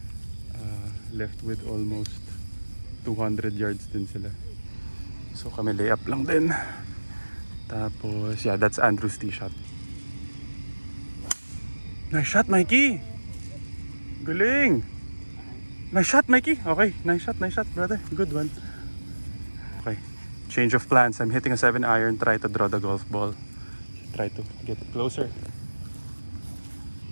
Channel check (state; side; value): inverted; both; correlation -1.00